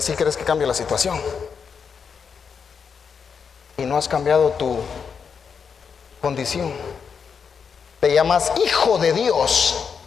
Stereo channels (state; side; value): quieter; right; 6.3 dB